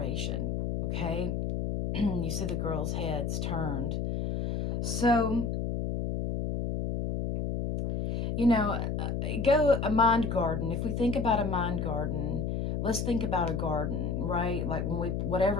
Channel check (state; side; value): noise; left; hum, 1 dB below the sound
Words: okay? You see the girl's head's turned. So, you know, go a mind garden. If we think about a mind garden, let's think about a garden, right? Like when